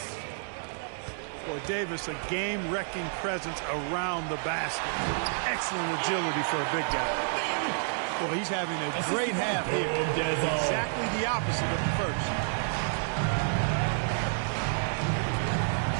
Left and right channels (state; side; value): silent; left; 58 dB below the other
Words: Boy, Davis, a game-wrecking presence around the basket. Excellent agility for a big guy. Boy, he's having a great half here. Exactly the opposite of the first.